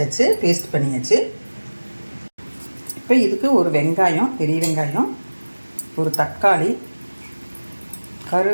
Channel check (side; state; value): both; inverted; correlation -1.00